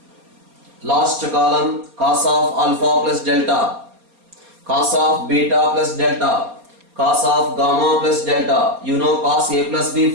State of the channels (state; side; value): late; left; 4.3 ms